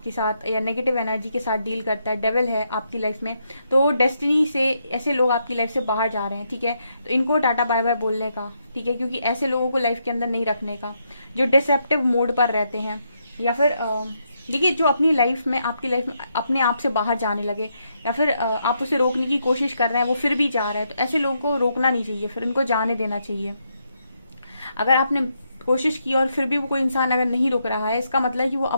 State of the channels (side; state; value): both; inverted; correlation -0.79